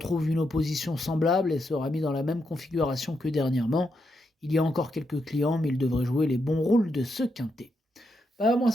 une opposition semblable et sera mis dans la même configuration que dernièrement. Il y a encore quelques clients, mais il devrait jouer les bons rôles de ce quintet. Moi,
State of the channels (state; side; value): normal; both; correlation 0.82